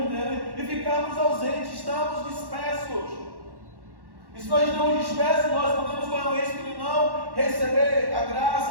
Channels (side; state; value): left; late; 1.1 ms